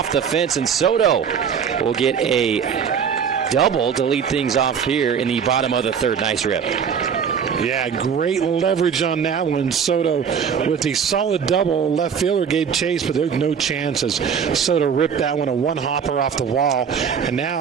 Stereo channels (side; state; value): left; quieter; 7.1 dB